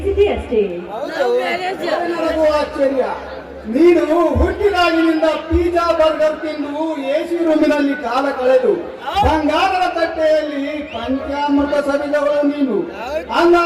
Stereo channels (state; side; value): identical; both; correlation 1.00